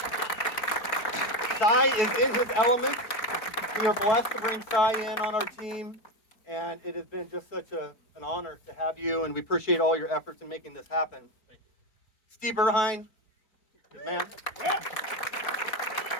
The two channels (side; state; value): right; late; 4.4 ms